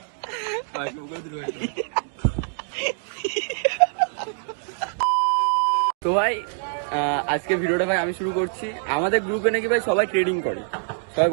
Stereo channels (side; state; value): left; silent; digital silence